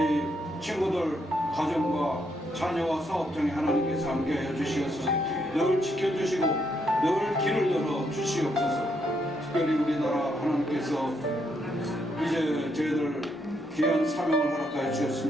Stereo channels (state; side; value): normal; both; correlation 0.76